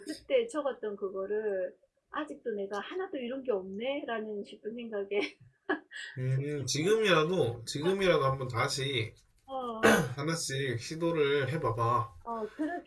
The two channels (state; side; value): identical; both; correlation 1.00